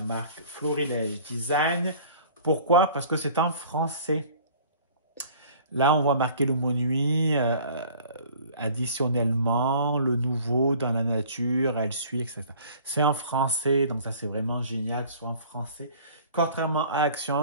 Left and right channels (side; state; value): both; inverted; correlation -0.48